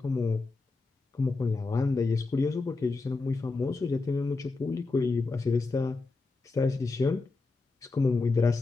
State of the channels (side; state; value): right; quieter; 3.7 dB